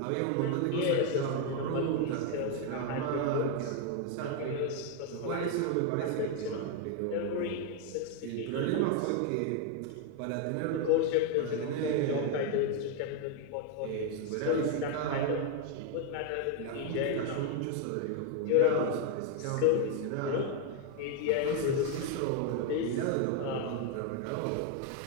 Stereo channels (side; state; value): both; different; correlation 0.01